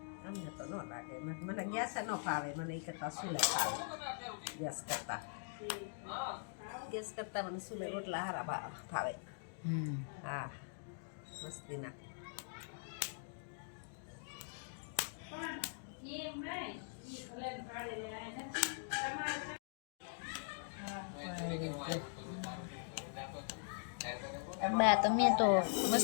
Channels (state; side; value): silent; right; digital silence